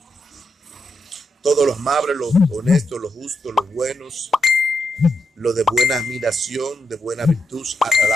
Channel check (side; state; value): both; normal; correlation 0.83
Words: todos los amables, los honestos, los justos, los buenos, los de buena admiración, de buena virtud,